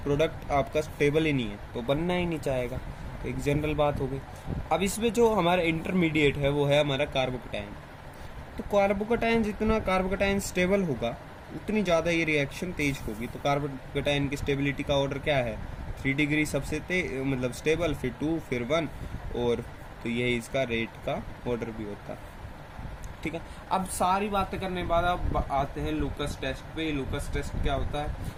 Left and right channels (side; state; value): both; identical; correlation 1.00